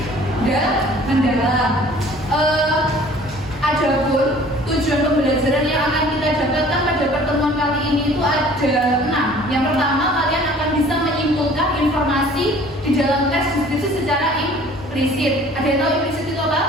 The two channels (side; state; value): both; normal; correlation 0.50